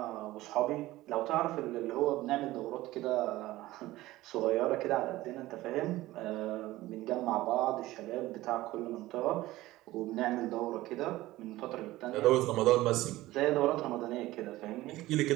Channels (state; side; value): quieter; left; 17.2 dB